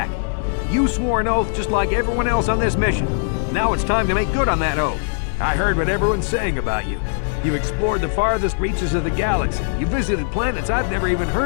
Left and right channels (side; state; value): right; silent; digital silence